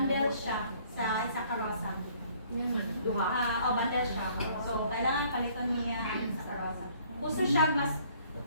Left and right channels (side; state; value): both; inverted; correlation -0.59